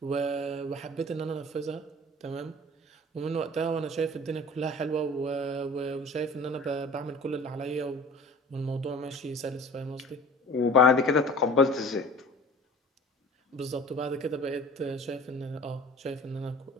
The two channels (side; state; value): both; normal; correlation 0.44